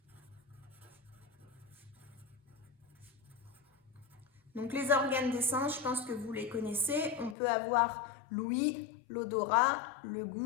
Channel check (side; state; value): right; drops out; at 7.4 s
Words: Donc les organes des sens, je pense que vous les connaissez. On peut avoir l'ouïe, l'odorat, le